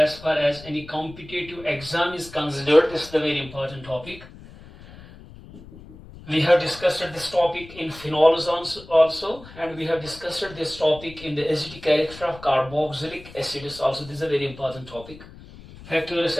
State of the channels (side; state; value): left; noise; rumble, 18 dB below the sound